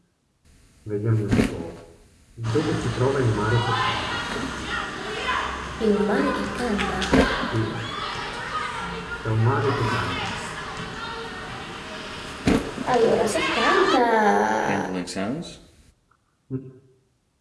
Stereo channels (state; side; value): identical; both; correlation 1.00